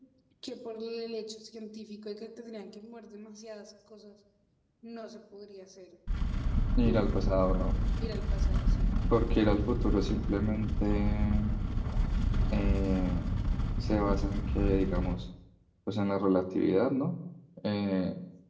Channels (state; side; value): identical; both; correlation 1.00